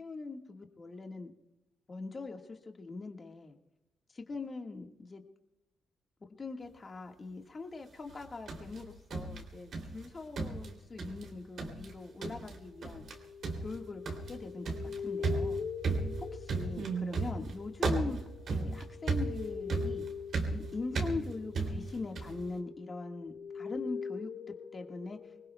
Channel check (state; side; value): normal; both; correlation 0.80